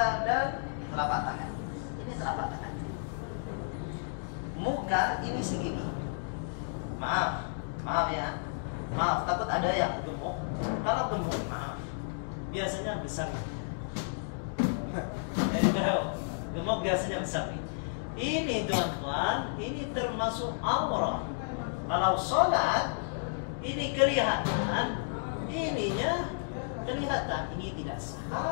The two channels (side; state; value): right; silent; digital silence